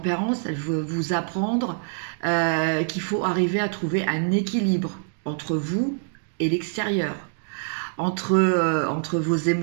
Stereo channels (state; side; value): silent; left; digital silence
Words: elle veut vous apprendre qu'il faut arriver à trouver un équilibre entre vous et l'extérieur, entre vos